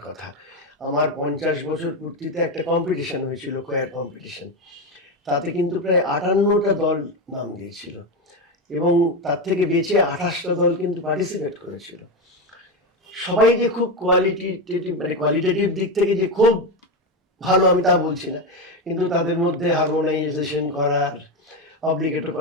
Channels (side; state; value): both; normal; correlation 0.13